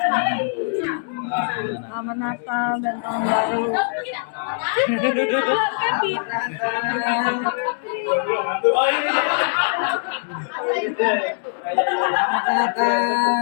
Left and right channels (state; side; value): silent; right; digital silence